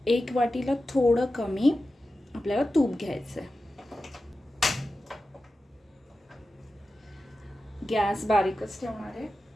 1 वाटीला थोडं कमी आपल्याला तूप घ्यायचं आहे. गॅस बारीकच ठेवणार आहे.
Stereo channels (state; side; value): normal; both; correlation 0.93